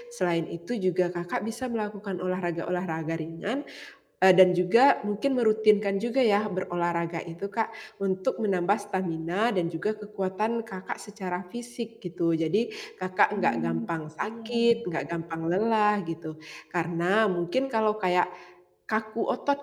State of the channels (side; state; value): both; identical; correlation 1.00